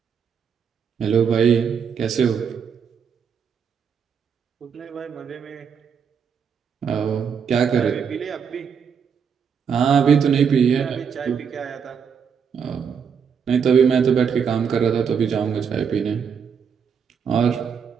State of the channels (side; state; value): left; quieter; 6.9 dB